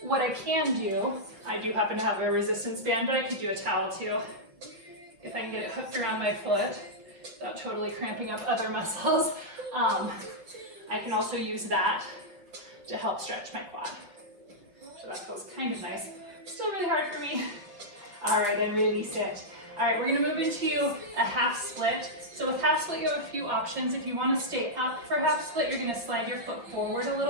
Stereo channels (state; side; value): late; left; 6.0 ms